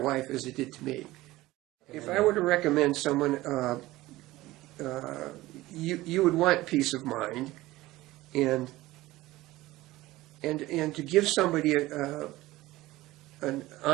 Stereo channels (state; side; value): quieter; left; 17.9 dB